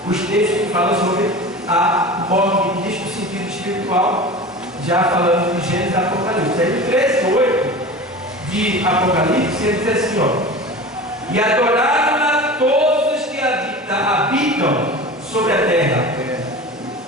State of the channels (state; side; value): normal; both; correlation 0.34